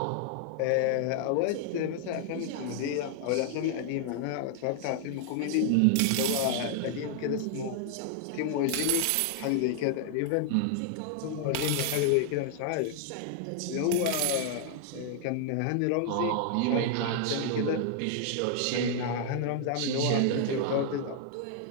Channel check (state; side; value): different; both; correlation 0.00